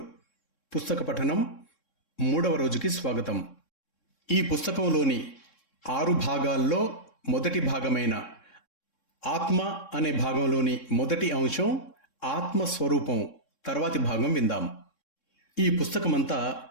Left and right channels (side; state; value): right; late; 3.7 ms